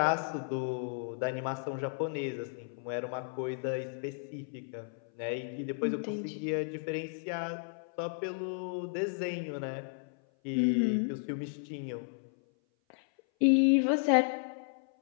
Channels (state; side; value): silent; right; 55 dB below the other